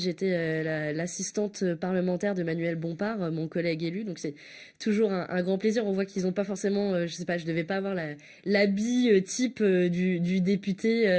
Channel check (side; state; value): both; identical; correlation 1.00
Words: l'assistante parlementaire de Manuel Bompard, mon collègue élu. Donc c'est toujours un grand plaisir. On voit qu'ils n'ont pas forcément, je sais pas, je devais pas avoir l'habit type du député.